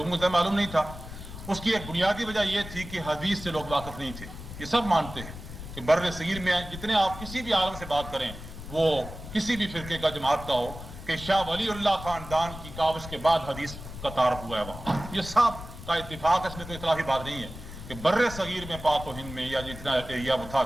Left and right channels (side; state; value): left; noise; rumble, 12 dB below the sound